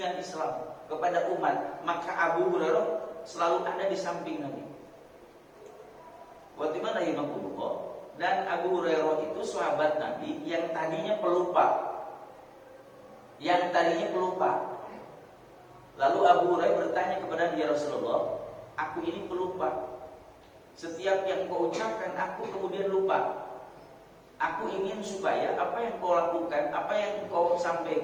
Islam kepada umat, maka Abu Hurairah selalu ada di samping Nabi. Bagaimana rahimahullah? Dan Abu Hurairah itu sahabat Nabi yang tadinya pelupa. Lalu Abu Hurairah bertanya kepada dia, Rasulullah, aku ini pelupa. Setiap yang kau ucapkan aku kemudian lupa. Aku ingin supaya apa yang kau lakukan, apa yang kau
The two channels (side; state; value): both; identical; correlation 1.00